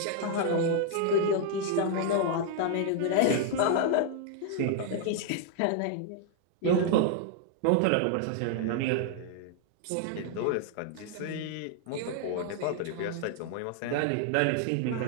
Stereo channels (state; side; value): different; both; correlation 0.00